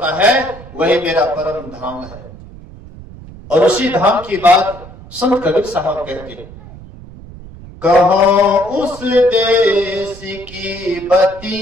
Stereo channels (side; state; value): right; noise; rumble, 17 dB below the sound